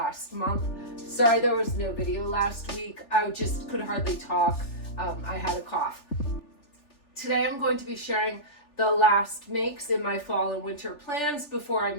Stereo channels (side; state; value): right; late; 3.4 ms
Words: month. Sorry there was no video last week. I just could hardly talk. I had a cough. Today I'm going to be sharing the last makes in my fall and winter plans before I